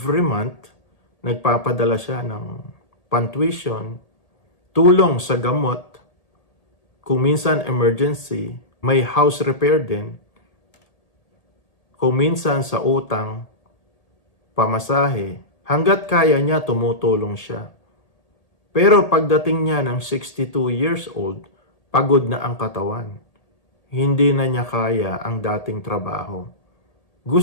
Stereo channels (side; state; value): right; late; 1.8 ms